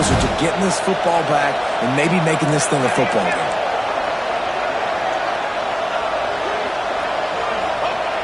to getting this football back and maybe making this thing a football game.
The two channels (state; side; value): identical; both; correlation 1.00